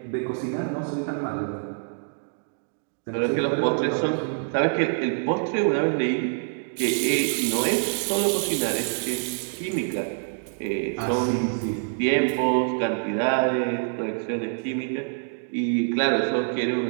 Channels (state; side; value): silent; left; 59 dB below the other